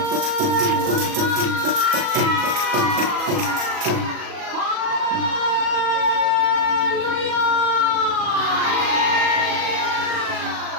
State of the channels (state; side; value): late; left; 37 ms